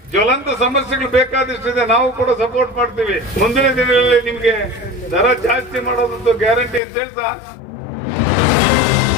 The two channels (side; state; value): right; drops out; at 6.8 s